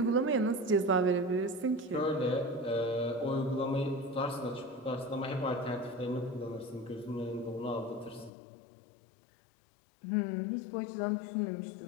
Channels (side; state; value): right; drops out; at 8.3 s